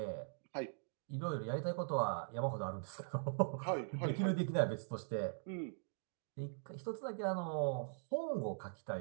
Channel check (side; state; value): left; silent; digital silence